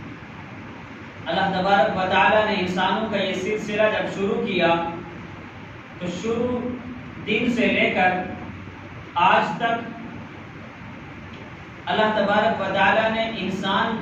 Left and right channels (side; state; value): both; identical; correlation 1.00